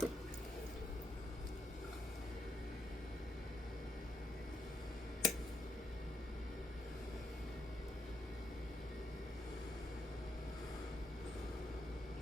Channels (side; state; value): both; normal; correlation 0.75